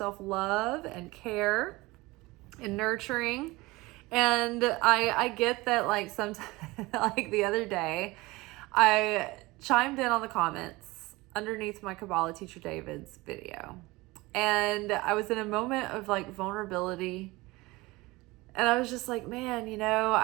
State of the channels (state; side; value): quieter; left; 21.6 dB